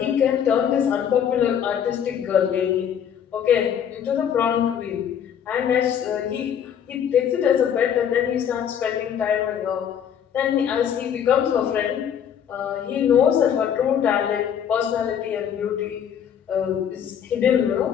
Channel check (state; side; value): quieter; right; 8.7 dB